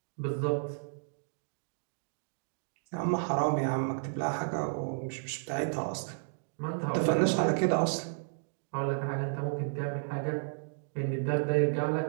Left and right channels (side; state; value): left; silent; digital silence